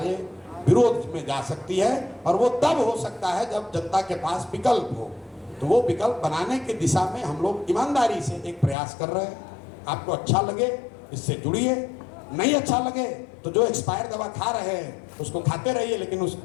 विरोध में जा सकती है, और वो तब हो सकता है जब जनता के पास विकल्प हो। तो वो विकल्प बनाने की दिशा में हम लोग ईमानदारी से एक प्रयास कर रहे हैं। आपको अच्छा लगे इससे जुड़िए, नहीं अच्छा लगे तो जो एक्सपायर दवा खा रहे हैं उसको खाते रहिए, लेकिन उस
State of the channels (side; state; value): right; drops out; at 8.8 s